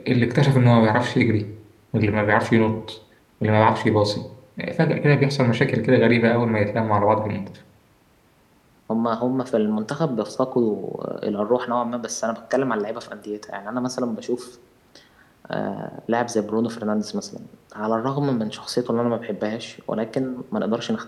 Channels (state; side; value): identical; both; correlation 1.00